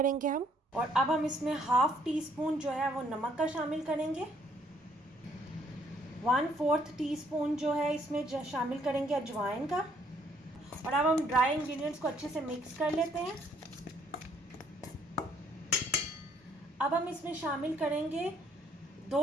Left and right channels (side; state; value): both; normal; correlation 0.66